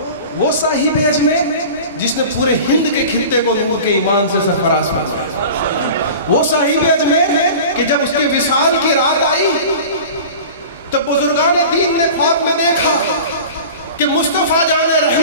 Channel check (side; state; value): both; inverted; correlation -0.37